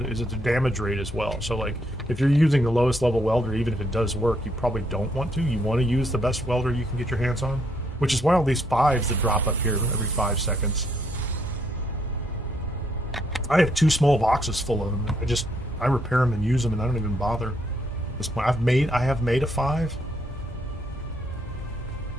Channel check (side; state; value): both; normal; correlation 0.72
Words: it the damage rate as well? So, like, if you're using the lowest level welder, even if it does work, you probably don't want to. You want to use the best welder you can get your hands on, which is why all these 5s that drop up here every 5 seconds. I have 2 small boxes full of them. I repair them and use them, and I don't even bother. At this point, I have made a 5.